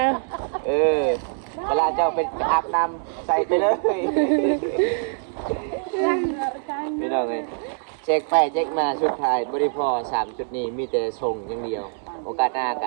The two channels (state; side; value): silent; left; digital silence